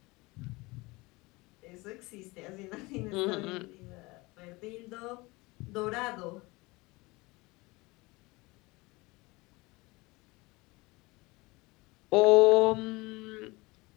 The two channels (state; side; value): quieter; right; 23.3 dB